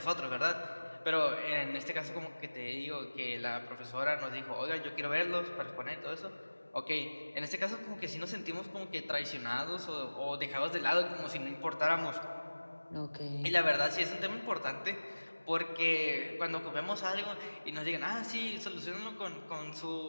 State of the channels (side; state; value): both; inverted; correlation -1.00